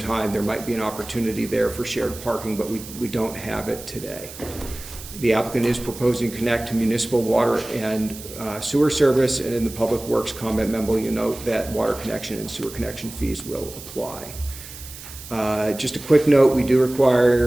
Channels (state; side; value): noise; right; hiss, 14 dB below the sound